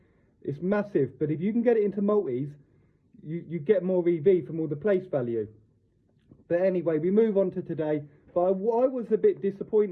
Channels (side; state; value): both; identical; correlation 1.00